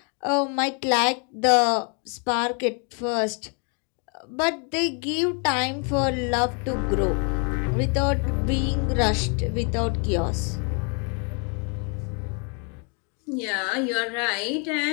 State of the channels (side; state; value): right; quieter; 38.4 dB